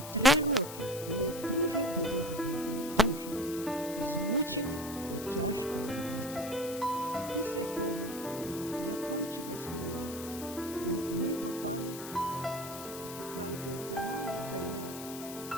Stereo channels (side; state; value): left; noise; hiss, 11 dB below the sound